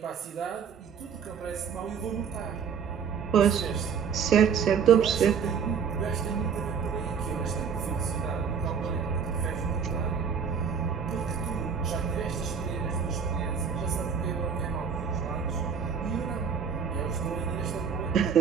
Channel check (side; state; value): left; quieter; 6.8 dB